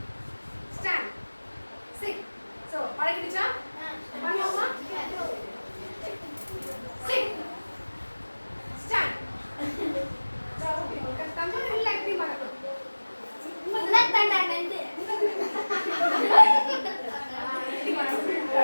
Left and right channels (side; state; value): both; inverted; correlation -1.00